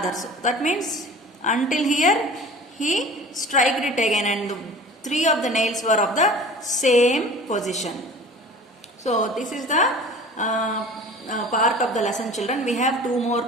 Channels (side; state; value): both; normal; correlation 0.42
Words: That means until here he struck it again, and three of the nails were of the same position. So this is the part of the lesson, children. We have 2 more